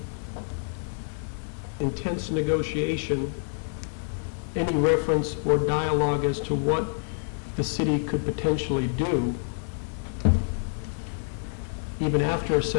intense negotiation, any reference or dialogue as to what the city could potentially do, even after a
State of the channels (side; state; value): right; silent; 60 dB below the other